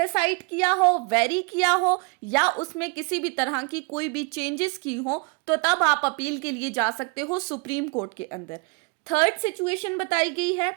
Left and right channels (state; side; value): quieter; left; 32.7 dB